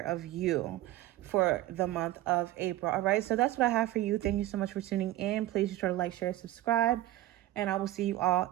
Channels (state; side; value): quieter; left; 15.2 dB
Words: you for the month of April. All right, so that's what I have for you. Thank you so much for tuning in. Please be sure to like, share, subscribe, and I will see you all